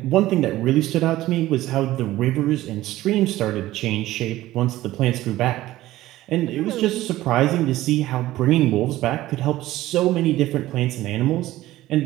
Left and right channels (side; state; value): left; quieter; 15.9 dB